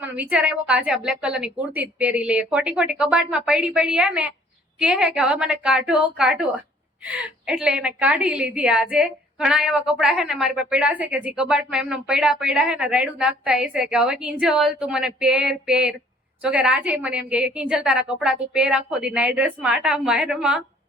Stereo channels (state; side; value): normal; both; correlation 0.58